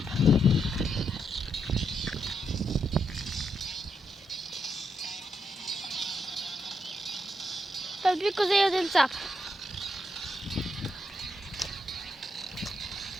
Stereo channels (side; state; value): both; normal; correlation 0.80